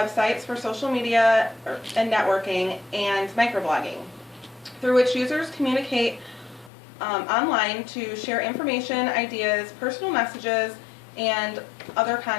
for social media and networking and microblogging, through which users communicate online to share information, ideas, personal messages, and other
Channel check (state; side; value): drops out; right; at 6.7 s